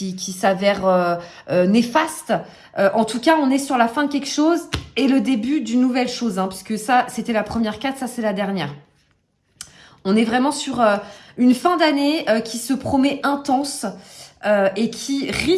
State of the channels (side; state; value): both; identical; correlation 1.00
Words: s'avère néfaste. En tout cas, on est sur la fin de quelque chose et le début d'une nouvelle chose, hein, puisque ça, c'était la première carte, ça, c'est la dernière. On est vraiment sur une fin d'année qui se promet intense et qui